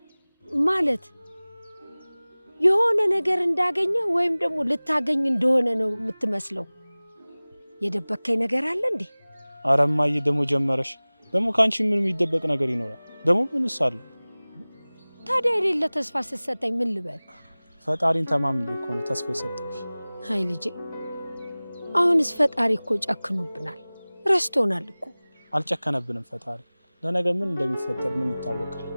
ማለት የሆነ ነገር እንዳገኘ ወይም ደግሞ ልታገኝ እንደሆነ ነው የምትመስለው። የደበከኝ ነገር አለ እንዴ? ኧረ እማዬ ደግሞ ጀመረሽ። ደግሞ ከአንቺ ምን የሚደበቅ ነገር ይኖራል? ደግሞ ምንስ አለ? ታዲያ የሌለ ተስፋ ስትሰጠኝ ምን ልበል? ፈጣሪን ተማምኜ እኮ ነው ተስፋ የሰጠሁሽ። አይ ልጄ፣ አሁንስ ፈጣሪ እኮ ጨክኖብናል፣ ረስቶናል እኮ። አልጨከነብንም ፈጣሪ። ለነገ ምን እንደሚፈጠር ምን ይታወቃል?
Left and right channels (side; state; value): both; inverted; correlation -0.99